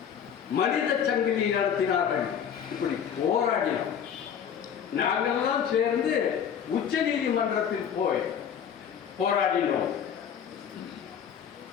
மனித சங்கிலி நடத்தினார்கள். இப்படி போராடினோம். நாங்களெல்லாம் சேர்ந்து உச்ச நீதிமன்றத்தில் போய் போராடினோம்.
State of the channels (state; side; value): quieter; right; 8.2 dB